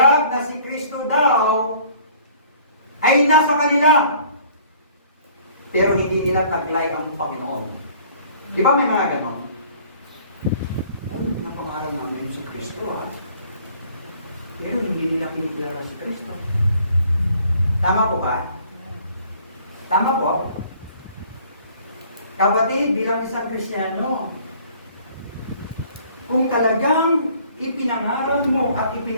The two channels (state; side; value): inverted; both; correlation -0.55